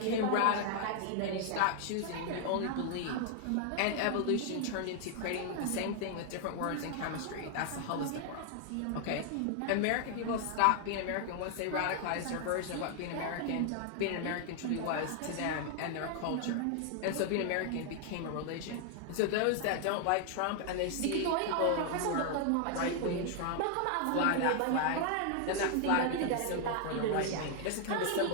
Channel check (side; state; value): both; different; correlation 0.00